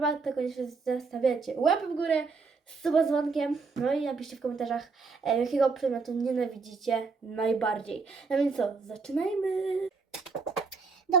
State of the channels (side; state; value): left; quieter; 4.6 dB